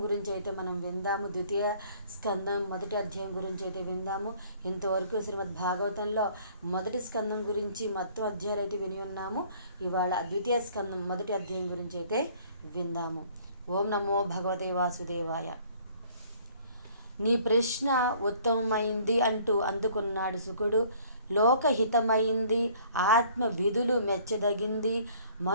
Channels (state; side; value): inverted; both; correlation -0.57